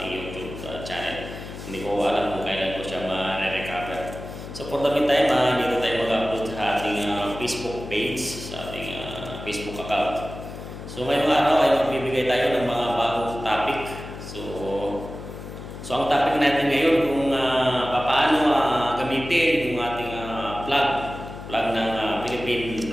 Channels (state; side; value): noise; left; hum, 11 dB below the sound